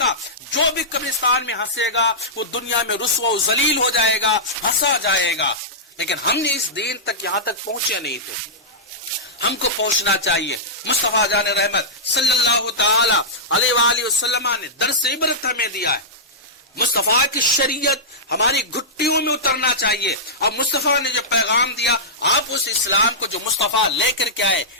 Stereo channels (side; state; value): both; normal; correlation -0.14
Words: جو بھی قبرستان میں ہنسے گا وہ دنیا میں رسوا و ذلیل ہو جائے گا، ہنسا جائے گا۔ لیکن ہم نے اس دین تک یہاں تک پہنچے نہیں تھے، ہم کو پہنچنا چاہیے۔ مصطفیٰ جان رحمت صلی اللہ تعالی علیہ وآلہ وسلم نے درس عبرت ہمیں دیا ہے۔ مصطفیٰ کی شریعت ہماری گھٹیوں میں اترنا چاہیے، اور مصطفیٰ نے جو پیغام دیا، آپ اس اسلام کو جو مصطفیٰ لے کر کے آئے،